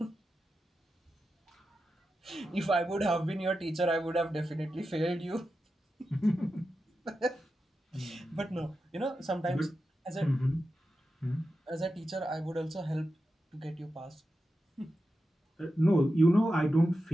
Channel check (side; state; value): both; normal; correlation 0.90